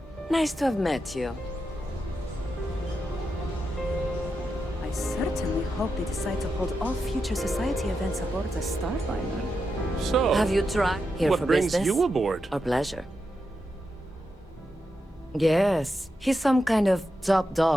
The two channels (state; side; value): normal; both; correlation 0.87